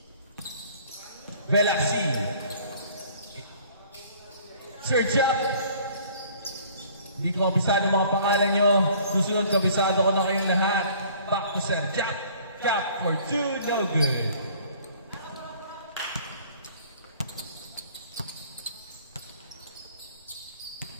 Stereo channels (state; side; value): inverted; both; correlation -0.53